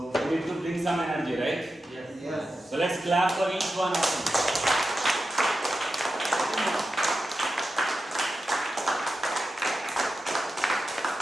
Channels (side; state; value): both; normal; correlation 0.90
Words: we need to bring some energy, right? Yes. So let's clap for each one of them.